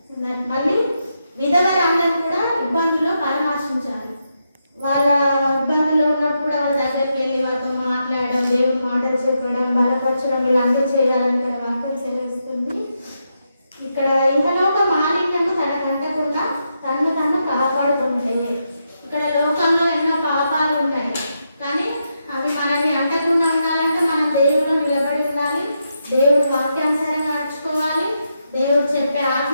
మళ్ళీ విధవరాండ్లను కూడా ఇబ్బందుల్లో పరామర్శించాలి. వాళ్ళ ఇబ్బందుల్లో ఉన్నప్పుడు కూడా వాళ్ళ దగ్గరికి వెళ్ళి వాళ్ళతో మాట్లాడడం, దేవుడు మాటలు చెప్పడం, బలపరచడం ఇలాంటివి చేయాలని ఇక్కడ వాక్యం సెలవిస్తుంది. ఇక్కడ ఇహలోక మాలిన్యము తనకంటకుండా తను కాపాడుకుంటాయి. ఇక్కడ లోకంలో ఎన్నో పాపాలు ఉన్నాయి కానీ అవి మనల్ని అంటకుండా ఉండాలంటే మనం దేవుడు నిలబడి ఉండాలి, దేవుడు వాక్యానుసారంగా నడుచుకోవాలి, దేవుడు చెప్పే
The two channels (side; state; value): both; inverted; correlation -0.83